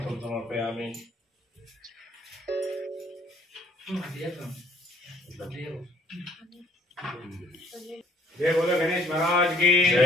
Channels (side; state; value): both; normal; correlation 0.60